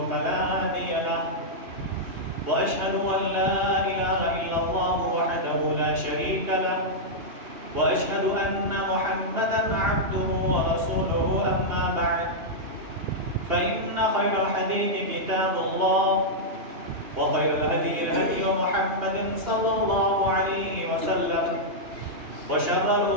فلا هادي له وأشهد أن لا إله إلا الله وحده لا شريك له وأشهد أن محمدا عبده ورسوله أما بعد فإن خير الحديث كتاب الله وخير الهدي هدي محمد صلى الله عليه وسلم وشر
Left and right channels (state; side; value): late; left; 2.8 ms